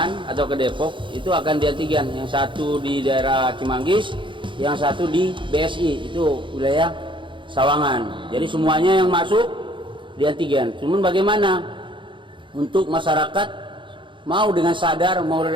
atau ke Depok itu akan diantigen. Yang satu di daerah Cimanggis, yang satu di BSI itu wilayah Sawangan. Jadi semuanya yang masuk di antigen. Cuman bagaimana untuk masyarakat mau dengan sadar, mau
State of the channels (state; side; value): late; left; 0.24 ms